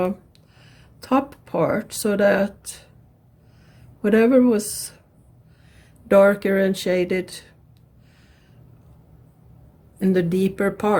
top part, so that whatever was darker and shaded in the deeper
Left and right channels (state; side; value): identical; both; correlation 1.00